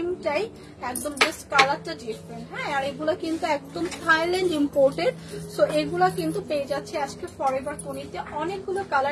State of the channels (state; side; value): identical; both; correlation 1.00